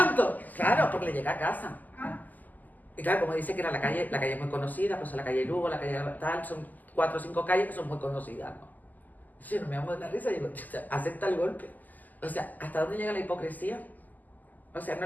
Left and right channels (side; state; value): right; late; 0.083 ms